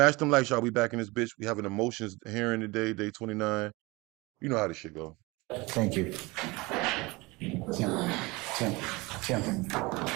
them lights, y'all. We back in this bitch. We having emotions hearing today, day 29. You know how this shit go. Thank you. Tim.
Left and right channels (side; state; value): left; quieter; 23.7 dB